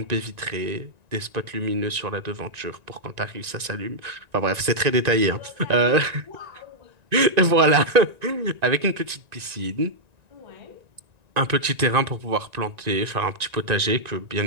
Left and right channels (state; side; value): late; left; 1.9 ms